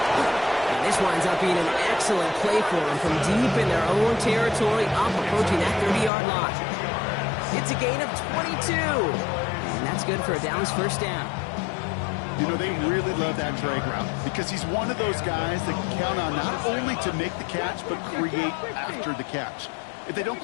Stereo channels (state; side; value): drops out; right; at 6.1 s